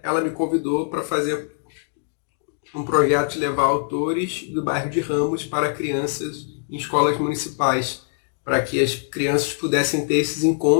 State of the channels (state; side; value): silent; right; digital silence